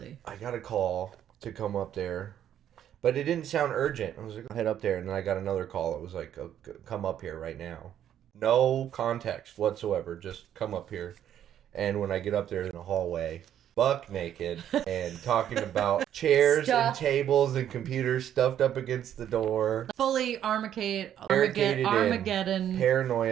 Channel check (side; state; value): left; quieter; 10.4 dB